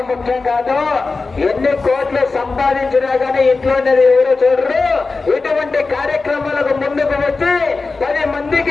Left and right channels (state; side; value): quieter; right; 4.0 dB